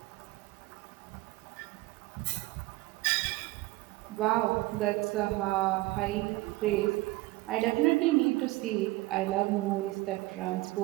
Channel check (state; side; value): quieter; left; 19.9 dB